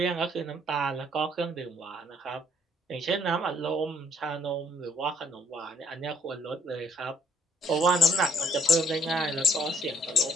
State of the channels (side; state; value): both; normal; correlation 0.63